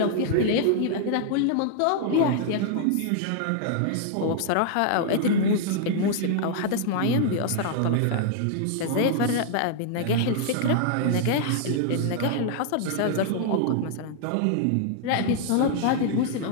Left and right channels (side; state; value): both; different; correlation -0.01